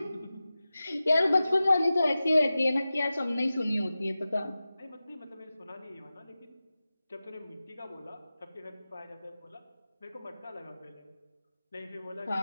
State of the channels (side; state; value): both; inverted; correlation -0.95